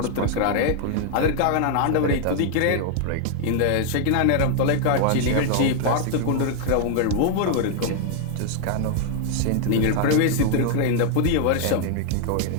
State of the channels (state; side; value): different; both; correlation 0.00